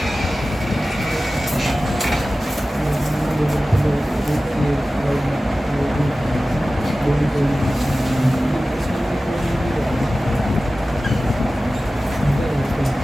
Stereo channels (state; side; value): normal; both; correlation 0.96